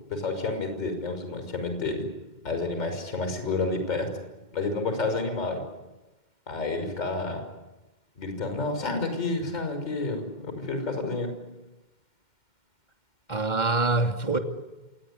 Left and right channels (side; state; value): right; late; 2.1 ms